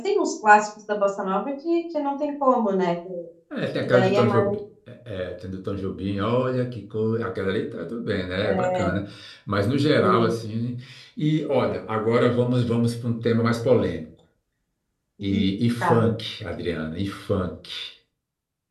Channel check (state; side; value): identical; both; correlation 1.00